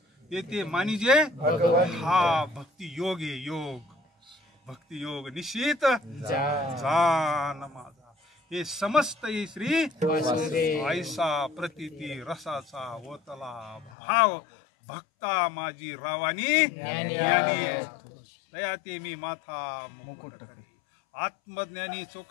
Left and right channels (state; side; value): drops out; right; at 13.9 s